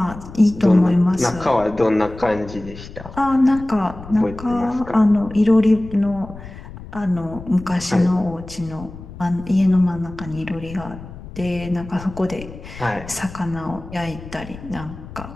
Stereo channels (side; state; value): left; noise; rumble, 15 dB below the sound